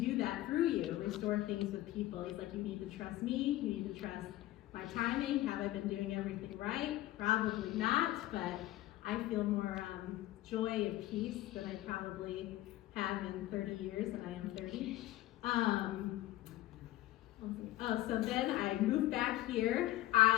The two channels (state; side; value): quieter; right; 15.9 dB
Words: that through you, restore things with people. He's like, you need to trust me, you need to trust my timing. Have I been doing everything right? Probably not, but I feel more joy and peace than I probably have in 30 years, and I am 30. So then I moved back here.